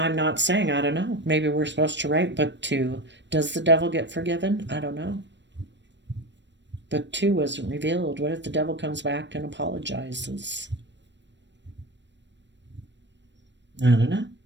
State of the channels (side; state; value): left; late; 0.53 ms